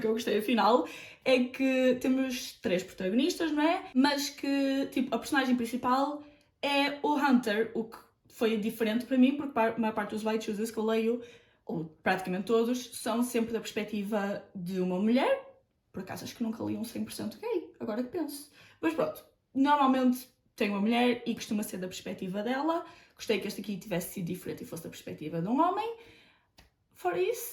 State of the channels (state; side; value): identical; both; correlation 1.00